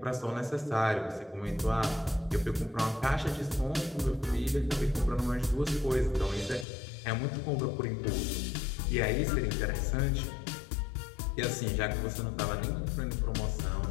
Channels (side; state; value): right; drops out; at 6.7 s